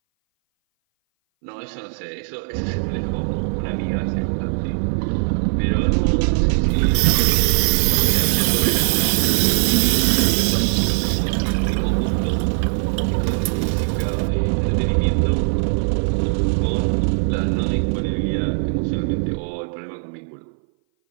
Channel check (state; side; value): silent; left; 59 dB below the other